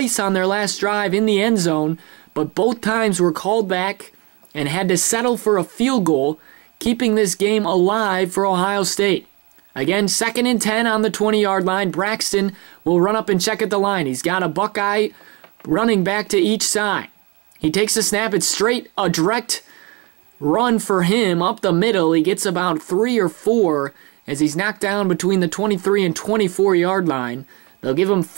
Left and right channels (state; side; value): quieter; left; 27.5 dB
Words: on their last drive in the end zone, but both times were called back and had to settle for a field goal, keeping this game alive for Ohio State. Again, 2nd and 10 on the 20-yard line. Braxton will run up and check at the line. He's got a Buckeye running back to each side. He takes the snap. It's straight, a direct run for him up the middle. He gets about 3 or 4 as he's knocked down between the 23 and 24-yard line. They'll give him